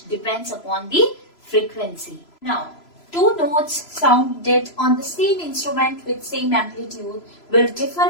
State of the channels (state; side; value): late; right; 3.0 ms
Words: depends upon the frequency. Now, two notes sounded on the same instrument with same amplitude will differ